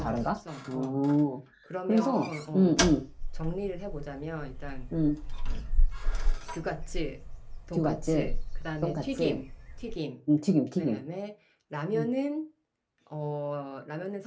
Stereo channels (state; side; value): identical; both; correlation 1.00